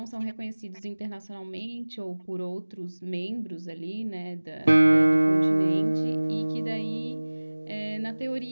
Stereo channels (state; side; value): inverted; both; correlation -1.00